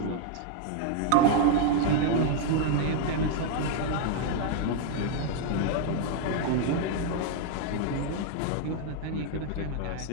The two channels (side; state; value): both; different; correlation 0.00